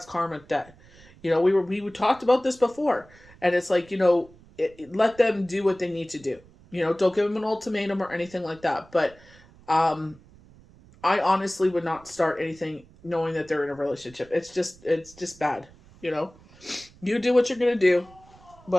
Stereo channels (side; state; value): right; noise; rumble, 25 dB below the sound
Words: karmic debt. We talked about this before, and it's like, let them do what they need to do. Don't give them an ultimatum or anything like that. But I honestly would not start anything knowing that they're in a relationship. It's just bad. You do what you're gonna do,